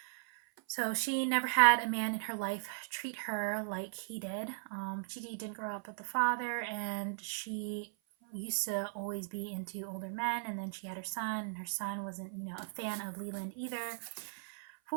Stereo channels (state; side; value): silent; left; 53 dB below the other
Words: So she never had a man in her life treat her like he did. She didn't grow up with the father, and she used to always be into older men. And then she had her son, and her son wasn't, a fan of Leland either,